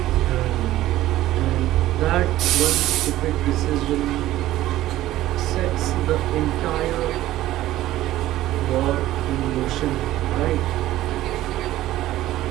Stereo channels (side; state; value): left; quieter; 15.0 dB